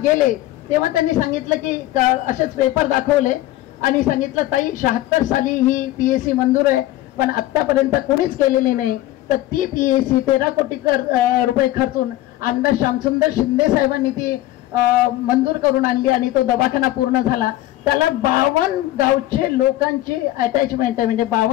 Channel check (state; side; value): quieter; right; 15.4 dB